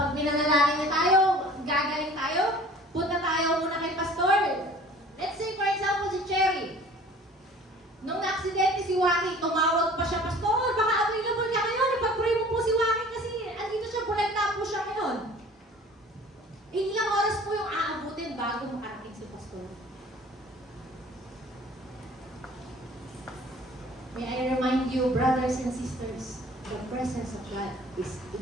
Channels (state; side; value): normal; both; correlation 0.48